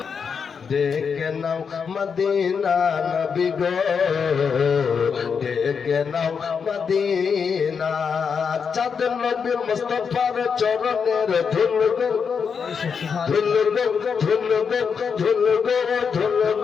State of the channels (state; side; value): quieter; right; 6.2 dB